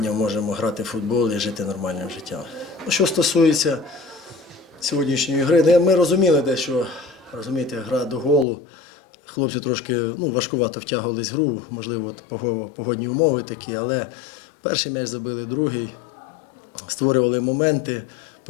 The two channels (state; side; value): drops out; right; at 8.5 s